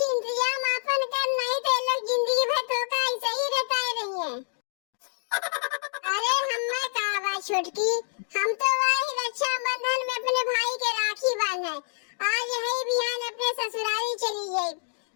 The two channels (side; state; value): right; silent; digital silence